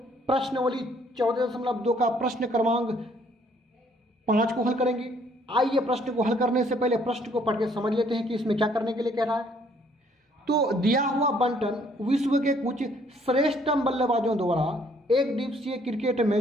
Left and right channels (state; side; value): normal; both; correlation 0.63